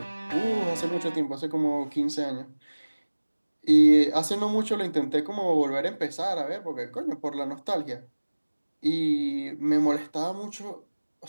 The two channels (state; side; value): inverted; both; correlation -1.00